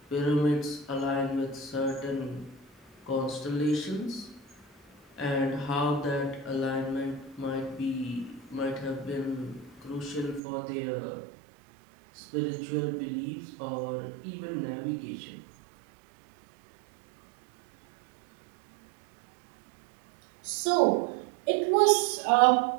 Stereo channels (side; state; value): left; drops out; at 10.4 s